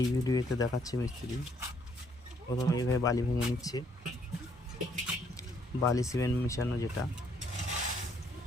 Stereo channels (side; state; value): both; normal; correlation 0.68